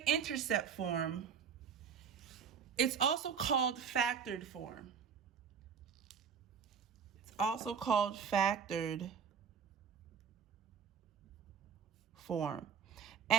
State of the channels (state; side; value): quieter; left; 6.9 dB